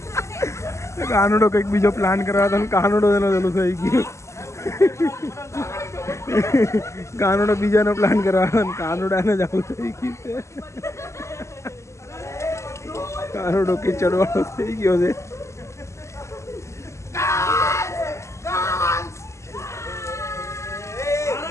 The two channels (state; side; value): late; right; 0.14 ms